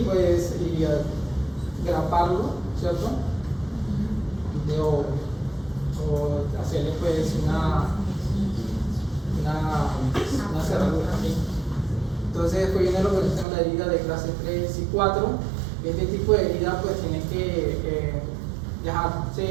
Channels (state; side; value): drops out; left; at 13.5 s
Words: pues, y graparlo, ¿cierto?, o hacerle pues una cerradura, ¿sí? Entonces después viene lo que se llama la herida de clase 3 y 4. Este tipo de herida pues tiene que